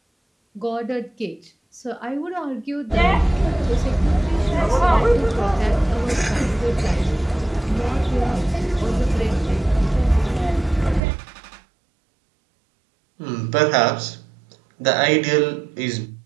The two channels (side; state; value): left; drops out; at 11.0 s